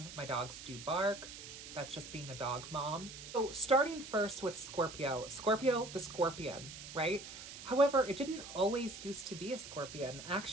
my dogs do bark. That's just being a dog mom. So starting first with Scorpio. Scorpio, the scorpion, right? However, it didn't always used to be a scorpion.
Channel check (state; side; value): noise; right; hiss, 12 dB below the sound